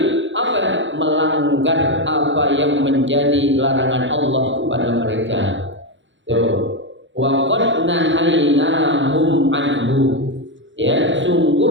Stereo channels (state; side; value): late; left; 0.54 ms